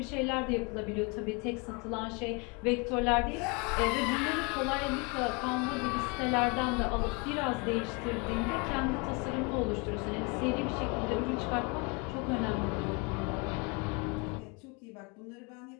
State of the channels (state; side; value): quieter; right; 30.2 dB